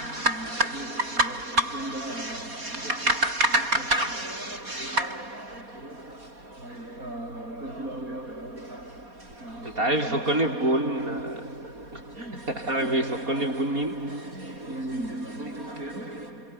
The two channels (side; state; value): left; late; 4.2 ms